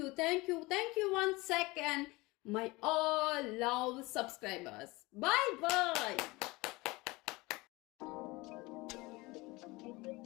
you once second my all love subscribers. Bye bye.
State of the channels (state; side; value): quieter; right; 22.6 dB